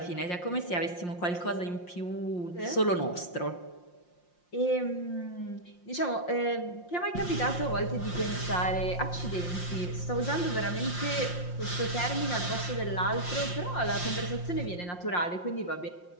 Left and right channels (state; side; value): late; right; 5.7 ms